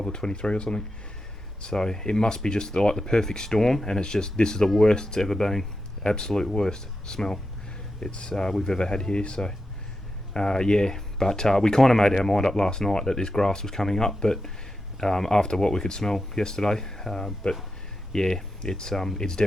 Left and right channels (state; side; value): normal; both; correlation 0.88